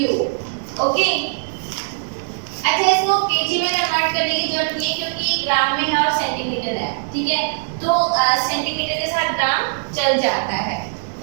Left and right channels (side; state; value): left; silent; digital silence